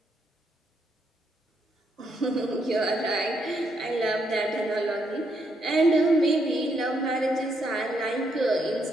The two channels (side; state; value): both; normal; correlation 0.76